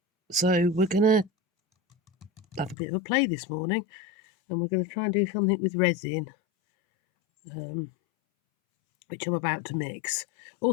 So we're going to have a bit of a play this morning, and we're going to try and do something with resin, which I'm about to mix.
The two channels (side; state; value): right; drops out; at 2.8 s